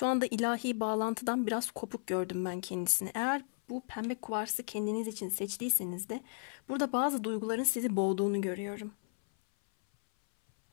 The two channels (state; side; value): silent; right; 55 dB below the other